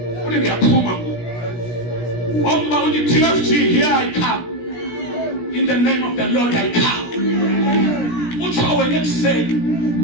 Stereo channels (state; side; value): late; right; 17 ms